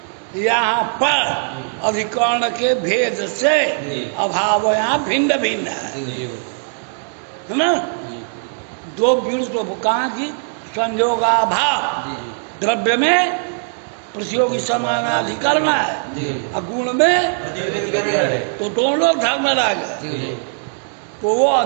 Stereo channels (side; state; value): left; silent; 64 dB below the other